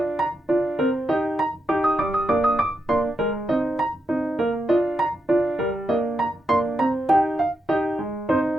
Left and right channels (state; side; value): normal; both; correlation 0.85